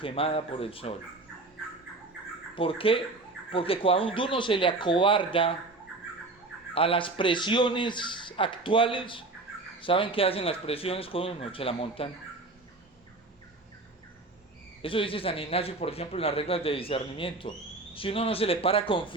por el sol. ¿Por qué? Porque cuando uno se le acobarda a las presiones actuales, ¿saben qué hacen las presiones con uno? Se la montan. Eso dice San Ignacio, por ejemplo, en las reglas de discernimiento. Si uno no se le para con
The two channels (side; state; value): left; quieter; 3.2 dB